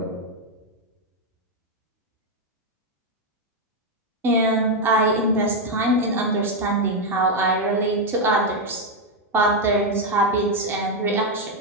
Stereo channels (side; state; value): both; normal; correlation 0.03